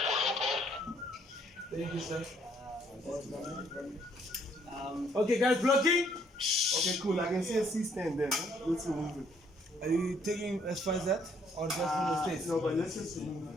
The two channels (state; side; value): normal; both; correlation 0.66